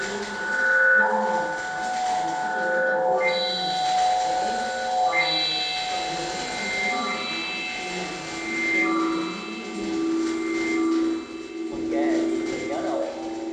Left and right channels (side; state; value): both; identical; correlation 1.00